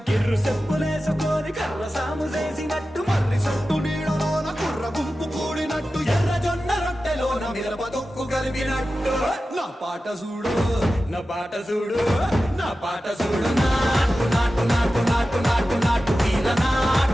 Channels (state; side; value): normal; both; correlation 0.94